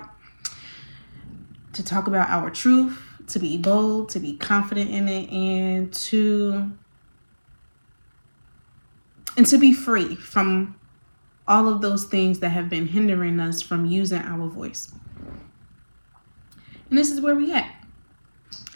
to talk about our truth, to be bold, to be confident in it, and to be free from all of those things that have been hindering us from using our voice. And this is where we at.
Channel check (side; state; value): both; inverted; correlation -1.00